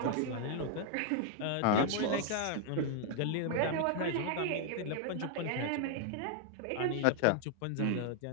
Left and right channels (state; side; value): different; both; correlation 0.00